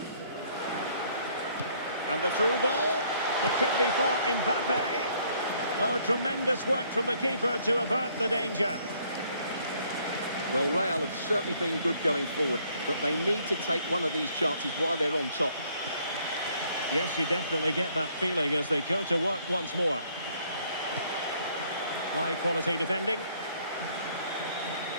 And the through ball. It could be for Mbappe. Oh, tremendous work from the keeper to avert the danger. Well, Real have certainly been good going forward, but they need to take one of these chances while they're on top. Yes, you definitely get that feeling as they go to work once more. High quality defending.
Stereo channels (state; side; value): inverted; both; correlation -0.64